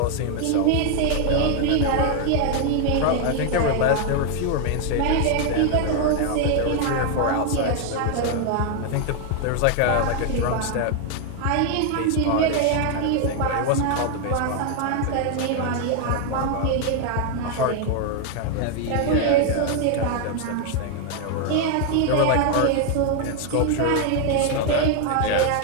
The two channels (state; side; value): different; both; correlation 0.00